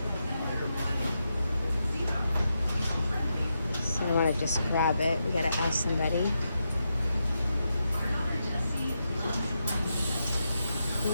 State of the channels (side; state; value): both; inverted; correlation -0.86